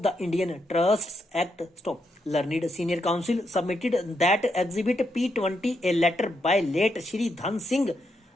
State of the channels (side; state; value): both; normal; correlation 0.81